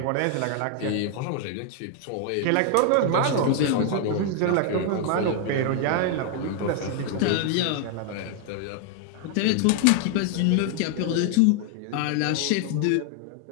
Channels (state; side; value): different; both; correlation 0.00